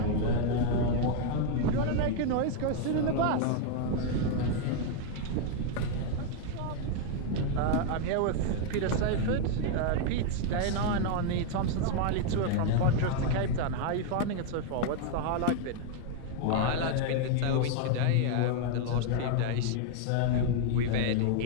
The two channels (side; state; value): both; different; correlation 0.00